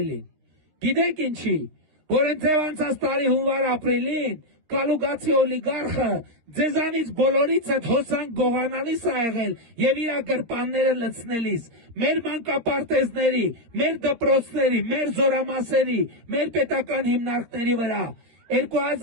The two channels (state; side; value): late; left; 13 ms